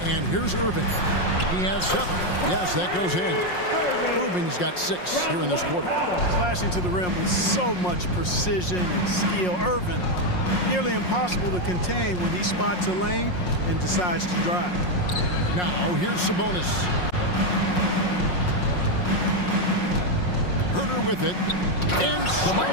And here's Irving. He has 7. Yes, that goes in. Irving's got 6 here in this quarter. Slashing to the rim with so much precision and skill. Irving, nearly impossible to contain when he spots a lane and decides to drive. Now, here's Sabonis. Herder with it. And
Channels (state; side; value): late; right; 5.5 ms